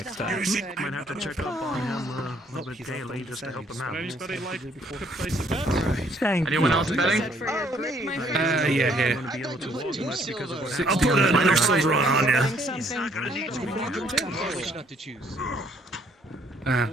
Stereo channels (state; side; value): normal; both; correlation 0.65